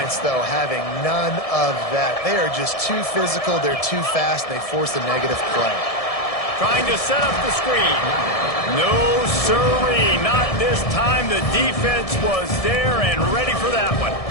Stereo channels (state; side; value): late; right; 1.7 ms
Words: though, having none of that. They are just too physical. They're too fast. And they force a negative play. Trying to set up the screen. No siree. Not this time. The defense was there and ready for that one.